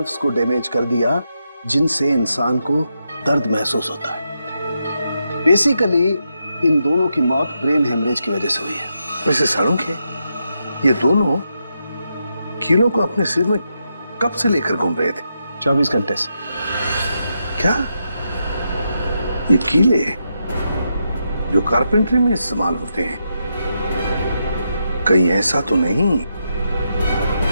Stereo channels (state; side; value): inverted; both; correlation -0.84